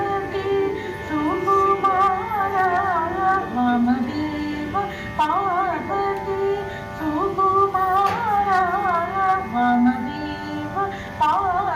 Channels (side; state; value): both; identical; correlation 1.00